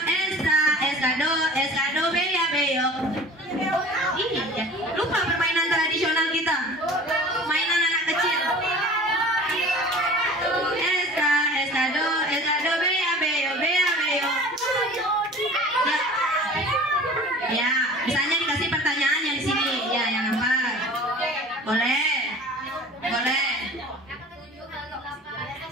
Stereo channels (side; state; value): both; normal; correlation 0.43